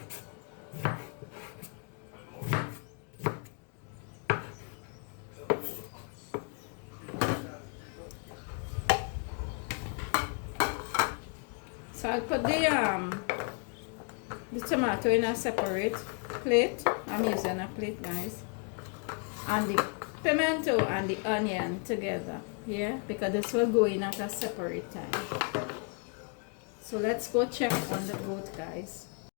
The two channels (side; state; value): right; quieter; 36.3 dB